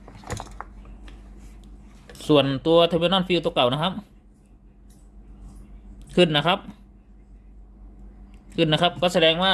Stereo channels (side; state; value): both; identical; correlation 1.00